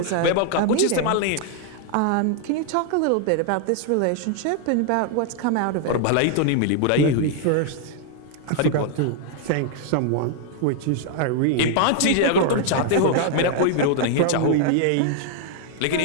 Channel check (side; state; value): both; different; correlation 0.00